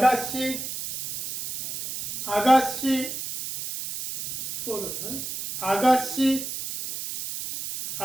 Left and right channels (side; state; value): right; noise; hiss, 6 dB below the sound